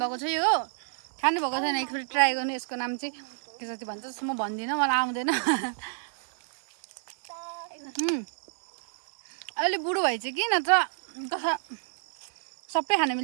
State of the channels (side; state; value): left; silent; digital silence